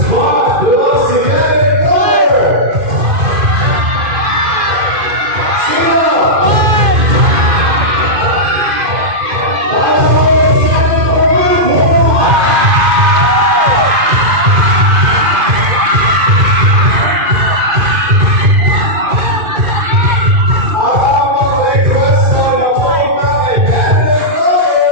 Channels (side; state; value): left; late; 2.5 ms